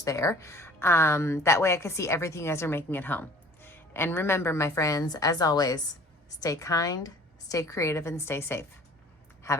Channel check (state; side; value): normal; both; correlation 0.49